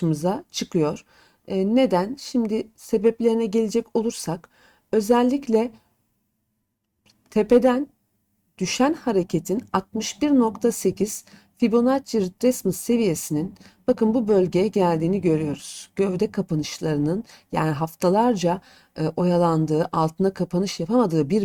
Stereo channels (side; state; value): both; identical; correlation 1.00